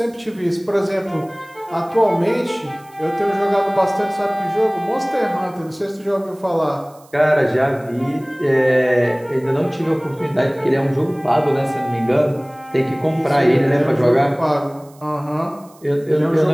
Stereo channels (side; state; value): right; noise; hiss, 28 dB below the sound